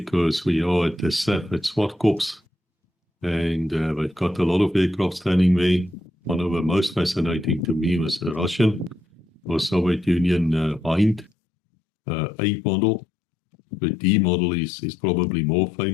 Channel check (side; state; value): right; drops out; at 11.3 s